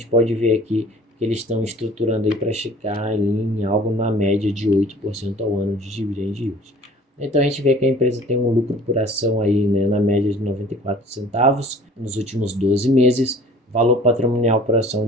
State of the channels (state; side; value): normal; both; correlation 0.49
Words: pode ver aqui que eles estão estruturando aí para chegar ali em algo na média de 8% ao ano de dividend yield. Então a gente vê que a empresa tem um lucro por ação aí, né, na média de 94 centavos nos últimos 12 meses, valor patrimonial por ação